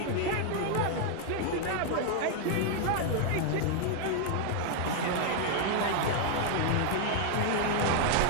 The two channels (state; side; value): different; both; correlation 0.00